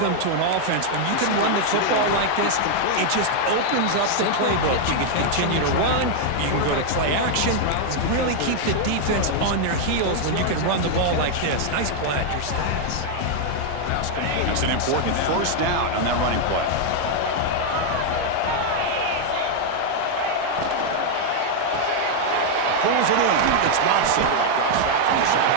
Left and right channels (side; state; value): both; different; correlation 0.00